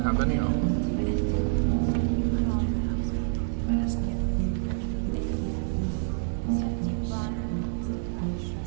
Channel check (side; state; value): left; silent; digital silence